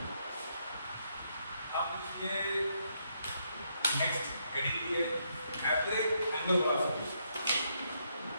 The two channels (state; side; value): inverted; both; correlation -0.76